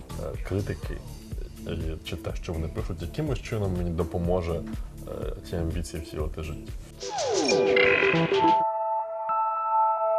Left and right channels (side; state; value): both; identical; correlation 1.00